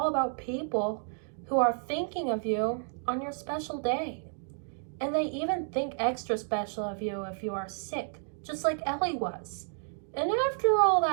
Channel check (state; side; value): silent; left; 57 dB below the other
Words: about people who are thinking of you on your special day. And they even think extra special of you if you are sick, just like Ellie was. And after all